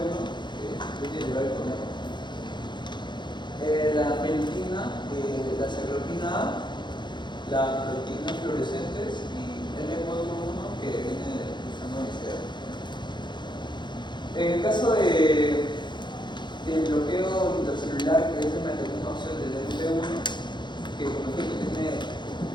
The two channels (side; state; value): right; late; 0.22 ms